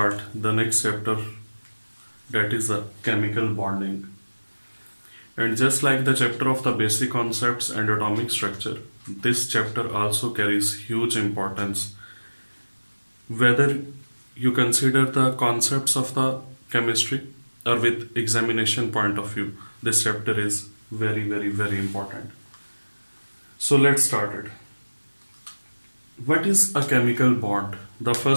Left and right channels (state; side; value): inverted; both; correlation -1.00